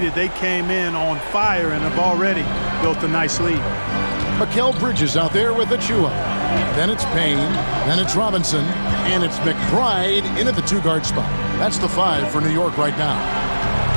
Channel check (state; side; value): inverted; both; correlation -1.00